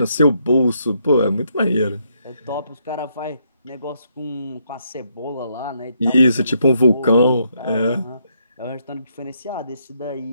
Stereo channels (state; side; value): inverted; both; correlation -0.75